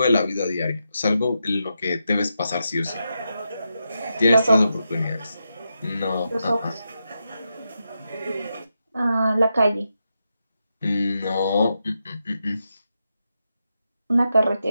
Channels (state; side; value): inverted; both; correlation -0.86